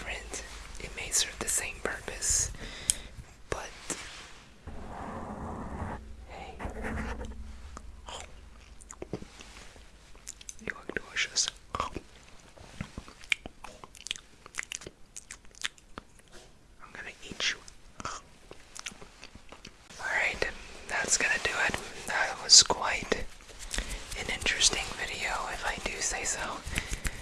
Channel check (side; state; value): both; identical; correlation 1.00